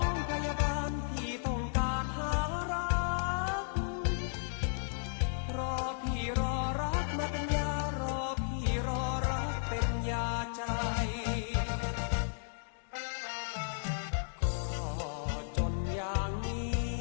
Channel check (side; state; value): right; silent; digital silence